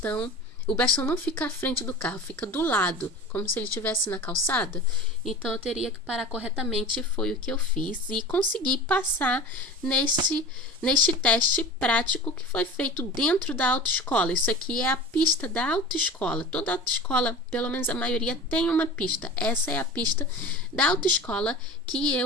O bastão não fica à frente do carro, fica do lado, como se ele estivesse na calçada. Então eu teria que parar corretamente, foi o que eu fiz. E consegui passar neste teste prático que foi feito dentro da autoescola. Isso aqui é a pista da autoescola. Toda autoescola, pelo menos a maioria, tem uma pista. Essa é a pista da autoescola que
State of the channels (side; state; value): both; normal; correlation 0.35